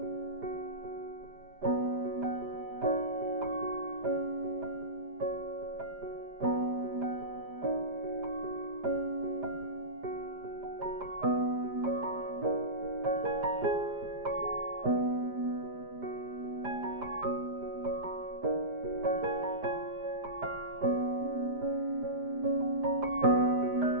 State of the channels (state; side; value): late; left; 5.0 ms